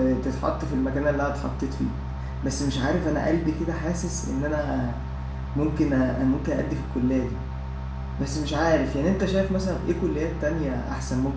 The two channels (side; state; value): both; identical; correlation 1.00